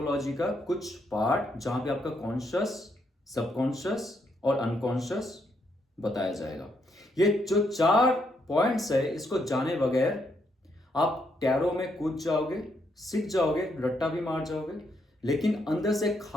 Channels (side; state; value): both; normal; correlation 0.76